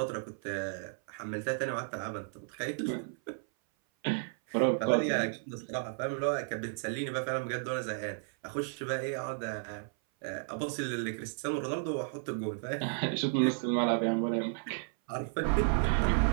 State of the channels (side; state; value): left; silent; 56 dB below the other